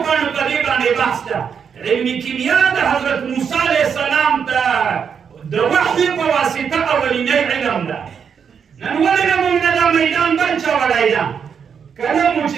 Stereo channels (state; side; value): quieter; left; 6.9 dB